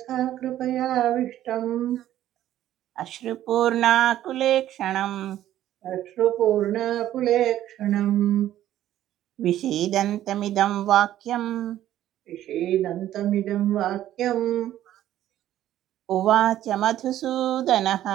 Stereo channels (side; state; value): left; quieter; 12.7 dB